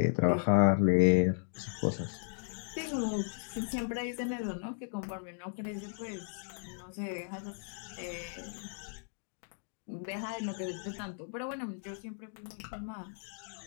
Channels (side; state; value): right; silent; digital silence